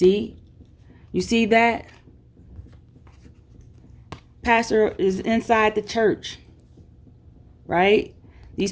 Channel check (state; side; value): identical; both; correlation 1.00